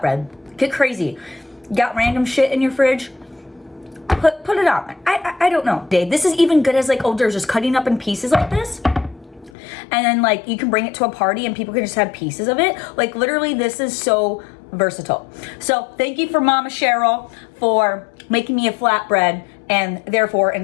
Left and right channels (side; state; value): right; drops out; at 9.5 s